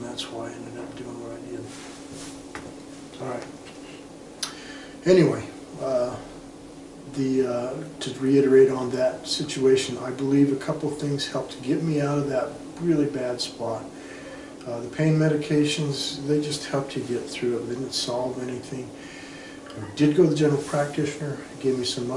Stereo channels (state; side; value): identical; both; correlation 1.00